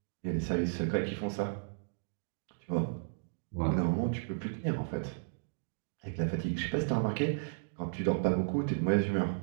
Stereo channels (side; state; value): left; silent; digital silence